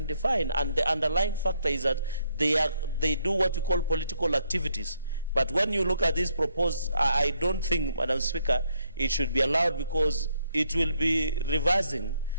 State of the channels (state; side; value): inverted; both; correlation -0.74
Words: defined, and the underlying factor is that they do what we call political activities. But when you look at this proposed, I don't think, Madam Speaker, it should be allowed, because it will be reversing,